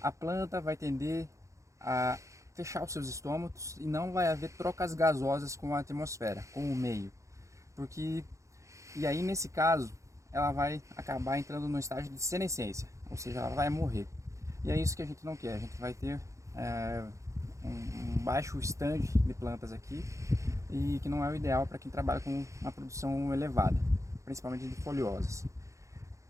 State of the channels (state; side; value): late; left; 0.15 ms